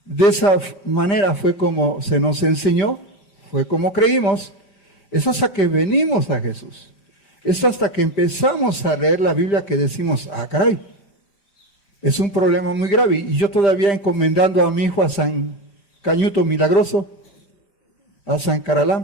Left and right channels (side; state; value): right; late; 5.1 ms